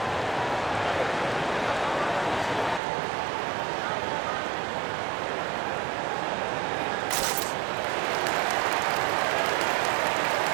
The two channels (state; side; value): drops out; left; at 2.8 s